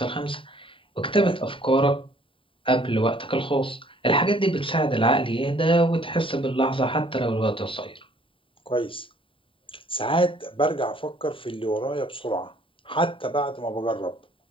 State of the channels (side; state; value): right; late; 0.25 ms